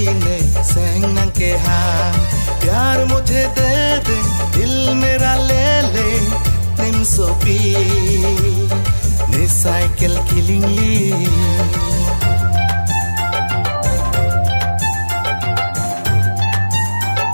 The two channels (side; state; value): both; inverted; correlation -1.00